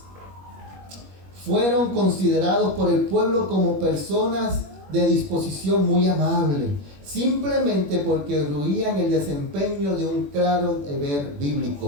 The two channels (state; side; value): late; left; 21 ms